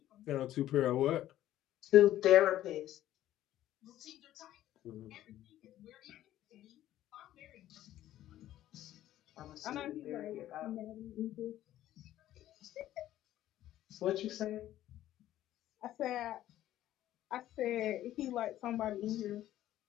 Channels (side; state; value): right; quieter; 13.3 dB